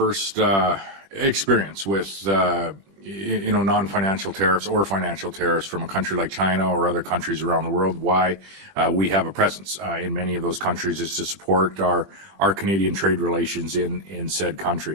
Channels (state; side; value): late; left; 21 ms